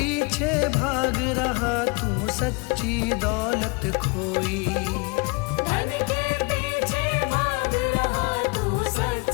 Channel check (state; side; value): quieter; right; 30.2 dB